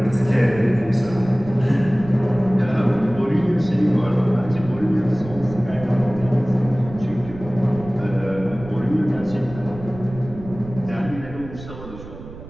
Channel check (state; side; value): noise; right; rumble, 14 dB below the sound